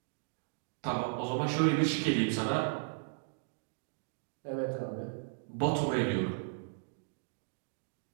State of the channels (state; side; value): silent; left; digital silence